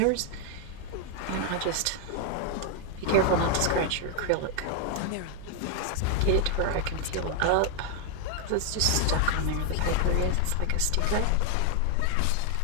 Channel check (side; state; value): both; different; correlation 0.01